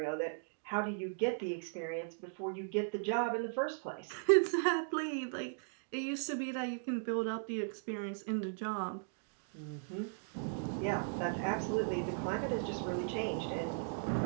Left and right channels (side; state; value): left; silent; digital silence